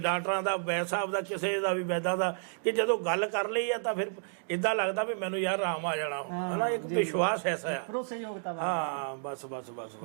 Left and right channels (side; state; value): left; silent; digital silence